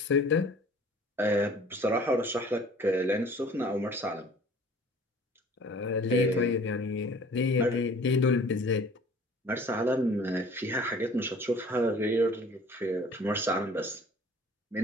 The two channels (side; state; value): both; normal; correlation 0.50